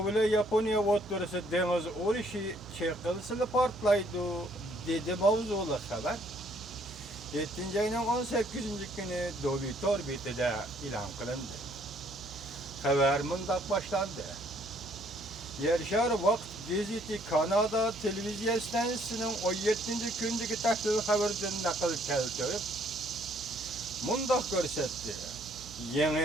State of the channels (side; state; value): right; noise; hum, 17 dB below the sound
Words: ile Yaponiya o'rtasida dengiz urushi chayqalishida portlaydi dedi mavzuli xabar. 7 ayning 18 kuni Dovitor betida e'lon qilindi. Xabar mundaq boshlandi. Yershar Vaqt gazeti Kanada televiziya stansiyasining 17 kundagi tahlil xabaridan naql keltirib, mundaq ko'rsatdi.